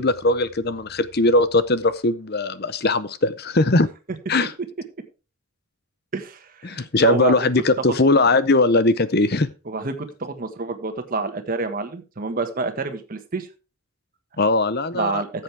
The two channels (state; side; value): normal; both; correlation 0.03